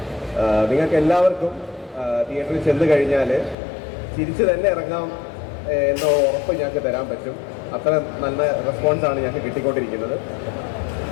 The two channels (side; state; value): right; drops out; at 3.6 s